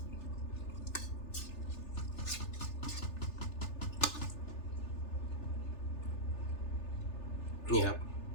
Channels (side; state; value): right; late; 3.4 ms